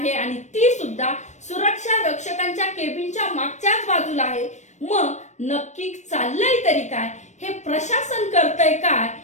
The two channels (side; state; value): right; late; 0.34 ms